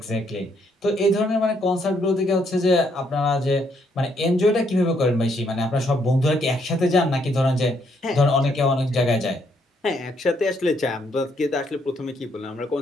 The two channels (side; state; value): both; normal; correlation 0.72